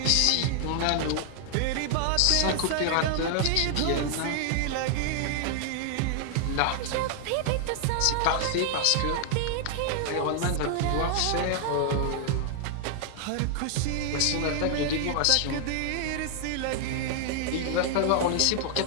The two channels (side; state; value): both; different; correlation 0.00